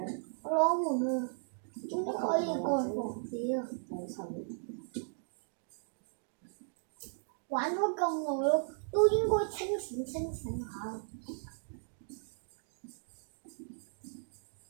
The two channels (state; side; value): silent; left; digital silence